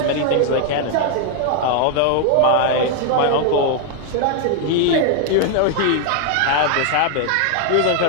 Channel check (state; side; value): different; both; correlation 0.00